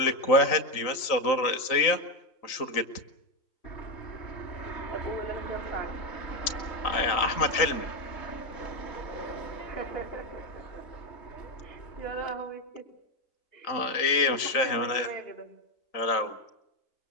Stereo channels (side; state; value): right; late; 3.8 ms